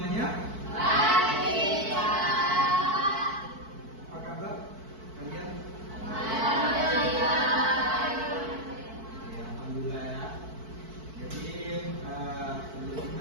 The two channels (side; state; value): left; late; 4.5 ms